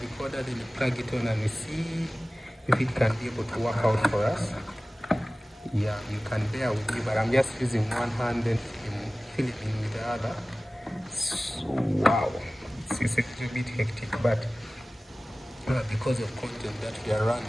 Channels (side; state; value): both; normal; correlation 0.97